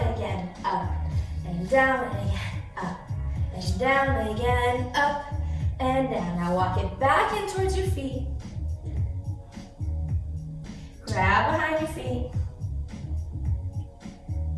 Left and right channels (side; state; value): both; identical; correlation 1.00